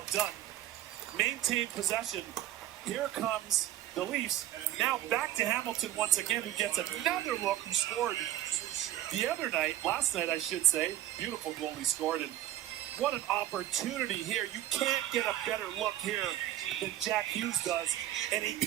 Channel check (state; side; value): quieter; left; 13.2 dB